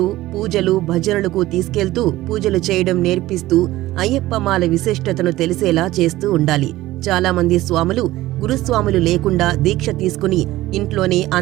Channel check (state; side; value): quieter; left; 16.6 dB